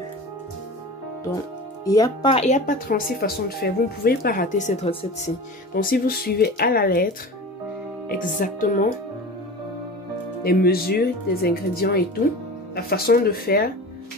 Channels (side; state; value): both; normal; correlation 0.34